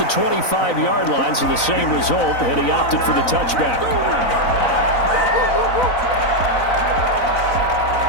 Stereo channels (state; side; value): late; right; 4.0 ms